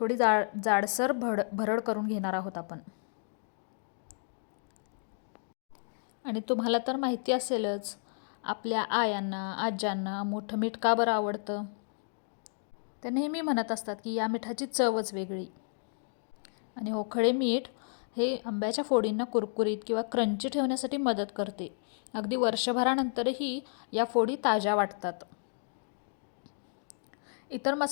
जाडसर भरड करून घेणार आहोत आपण. आणि तुम्हाला तर माहिती असेलच, आपल्या आयांना आज्यांना मोठं मीठ का बरं आवडतं. ते नेहमी म्हणत असतात की या मिठाची चवच वेगळी. आणि हो, खडे मीठ हे आंब्याच्या फोडींना कुरकुरीत किंवा क्रंची ठेवण्यासाठी मदत करते. अगदी वर्षभरानंतरही या फोडी ताज्या वाटतात. इतर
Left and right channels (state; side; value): silent; right; digital silence